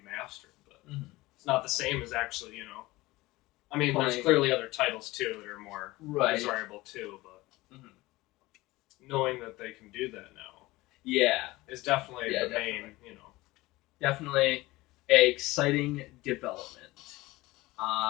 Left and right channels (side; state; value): right; quieter; 19.8 dB